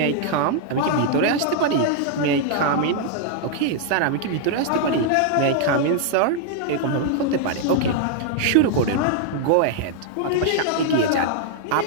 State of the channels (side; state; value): both; different; correlation 0.00